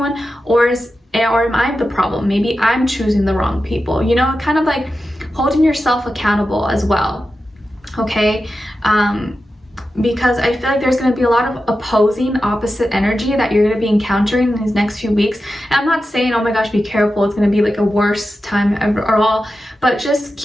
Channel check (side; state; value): both; normal; correlation 0.91